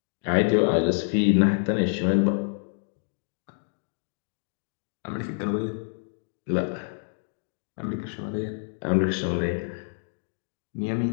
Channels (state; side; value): silent; right; digital silence